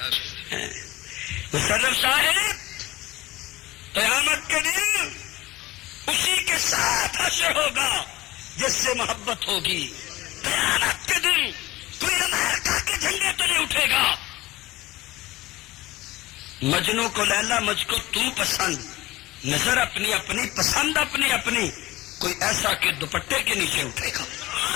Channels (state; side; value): quieter; right; 18.5 dB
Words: مشرف صاحب، قیامت کے دن اسی کے ساتھ حشر ہوگا جس سے محبت ہوگی. قیامت کے دن کوئی امریکہ کے جھنڈے تو نہیں اٹھے گا. مجنو کو لیلا، مجھ کو تو پسند، نظر اپنی اپنی، پسند اپنی اپنی، کوئی ایسا کہ دوپٹے کے نیچے اٹھے گا.